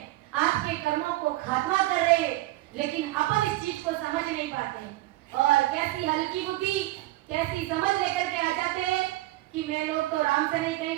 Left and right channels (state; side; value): quieter; left; 17.7 dB